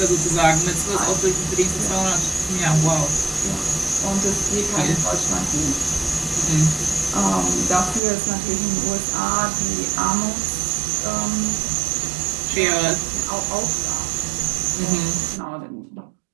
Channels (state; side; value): drops out; left; at 8.0 s